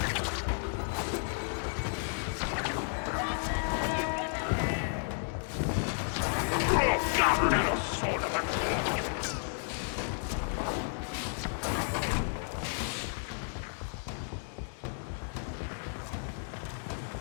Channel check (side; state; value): right; silent; 56 dB below the other